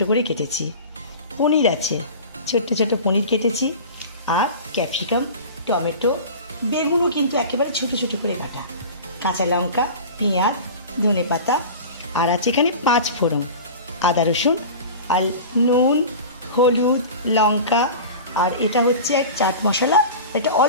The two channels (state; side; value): inverted; both; correlation -0.34